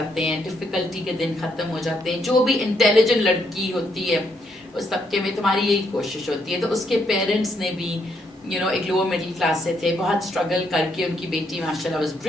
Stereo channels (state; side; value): normal; both; correlation 0.74